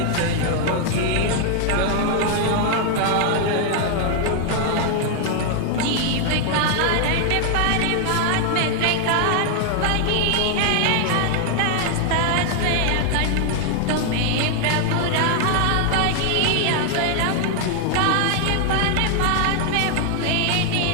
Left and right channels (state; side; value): different; both; correlation 0.00